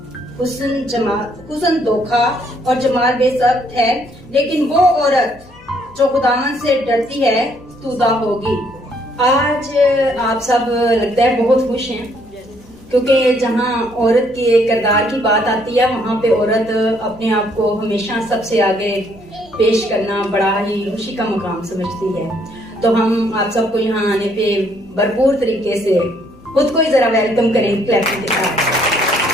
हुस्न धोखा और जमाल बेसब्त है, लेकिन वो औरत जो खुदावन से डरती है स्तुदा होगी। आज आप सब लगता है बहुत खुश हैं, क्योंकि जहाँ औरत के किरदार की बात आती है वहाँ पे औरत अपने आप को हमेशा सबसे आगे पेश करना बड़ा ही खुशी का मकाम समझती है। तो हम आप सबको यहाँ आने पे भरपूर तरीके से खुद को ही जरा वेलकम करें क्लैपिंग के साथ।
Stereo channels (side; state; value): left; noise; hum, 26 dB below the sound